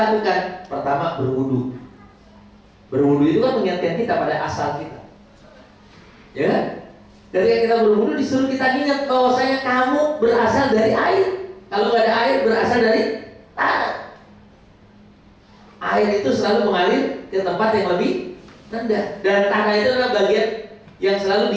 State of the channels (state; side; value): identical; both; correlation 1.00